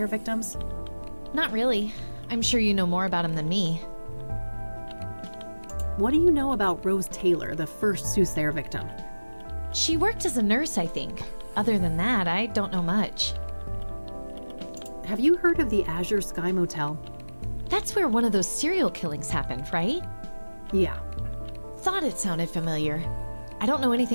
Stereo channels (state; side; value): inverted; both; correlation -1.00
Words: victims? Not really. I'm sure you know more about him than me. What do you know about Rose Taylor, the first Soothsayer victim? She worked as a nurse, I think. Other than that, I don't know much. Have you heard of the Azure Sky Motel? That's where one of those serial killings happened, right? Yeah. Thought it sounded familiar. I don't know